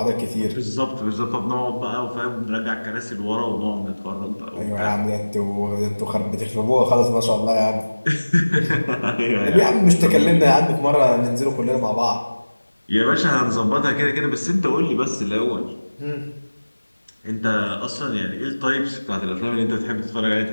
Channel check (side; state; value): both; inverted; correlation -1.00